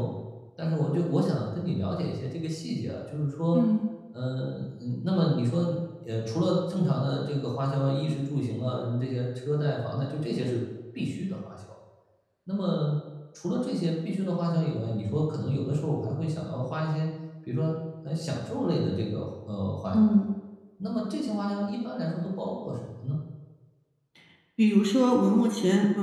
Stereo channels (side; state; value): both; identical; correlation 1.00